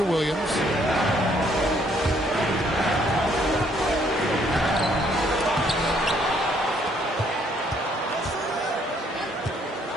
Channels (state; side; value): normal; both; correlation 0.67